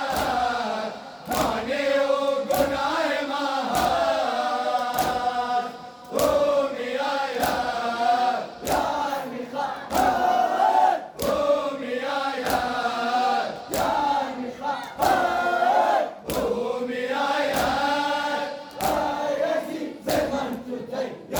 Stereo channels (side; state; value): both; identical; correlation 1.00